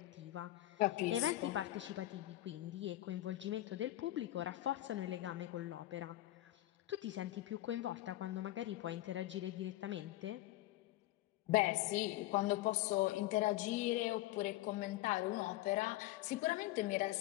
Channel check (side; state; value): right; quieter; 16.1 dB